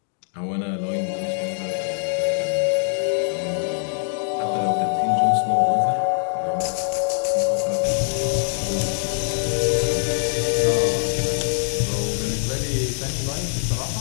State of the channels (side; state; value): right; silent; digital silence